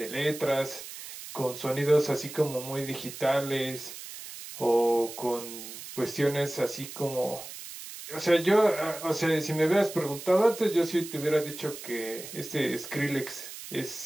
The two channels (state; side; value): noise; right; hiss, 12 dB below the sound